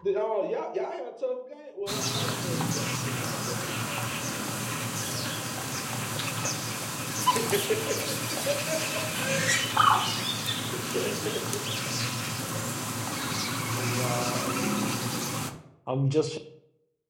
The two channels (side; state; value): both; identical; correlation 1.00